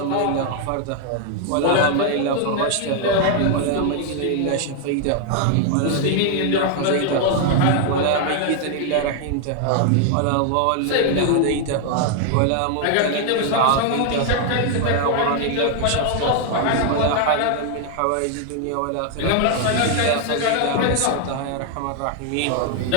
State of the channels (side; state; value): both; different; correlation 0.00